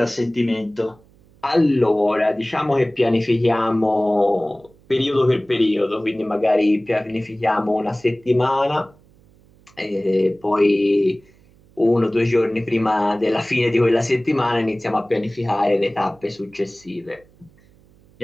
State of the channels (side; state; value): right; noise; hum, 29 dB below the sound